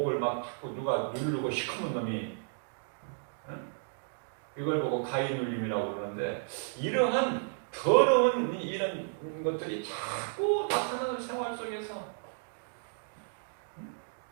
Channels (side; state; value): left; silent; digital silence